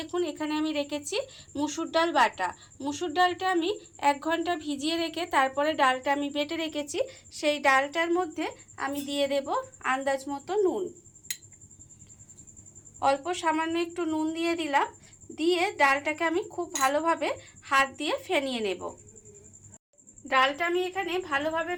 এখানে আমি রেখেছি মুসুর ডাল বাটা। মুসুর ডালটা আমি 1 ঘন্টা ভিজিয়ে রেখে তারপরে ডালটা আমি বেটে রেখেছি। সেই ডালটার মধ্যে আমি দিয়ে দেব আন্দাজ মতো নুন, অল্প সামান্য একটু নুন দিয়ে দিলাম। দিয়ে ডালটাকে আমি খুব ভালোভাবে হাত দিয়ে ফেনিয়ে নেব। ডালটা আমি এখানে ভালোভাবে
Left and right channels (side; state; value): both; identical; correlation 1.00